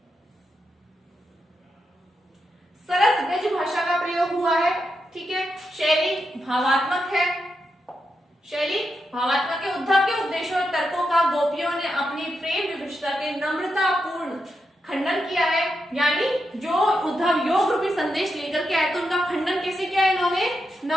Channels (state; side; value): normal; both; correlation 0.86